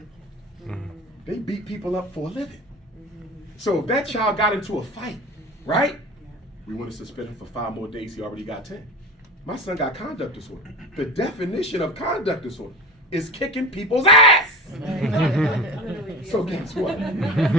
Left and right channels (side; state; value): both; normal; correlation 0.31